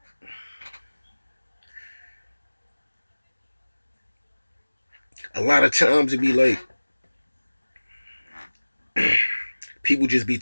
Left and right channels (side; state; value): both; inverted; correlation -1.00